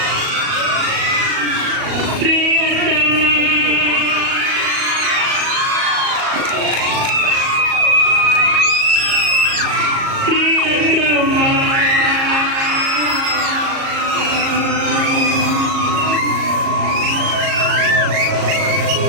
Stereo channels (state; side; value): late; left; 37 ms